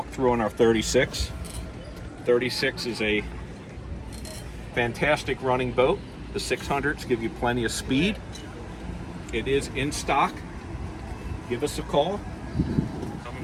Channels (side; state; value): both; identical; correlation 1.00